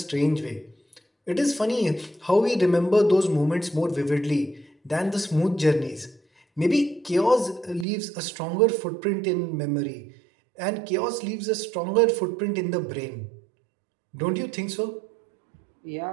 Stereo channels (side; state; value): left; drops out; at 7.9 s